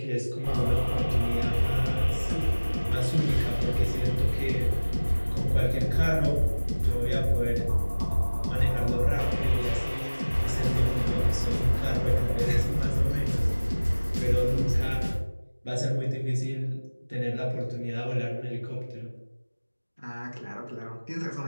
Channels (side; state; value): both; inverted; correlation -1.00